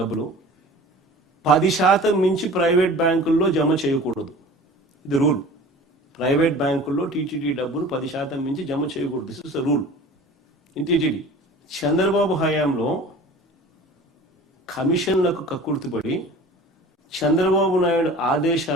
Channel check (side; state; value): both; normal; correlation 0.42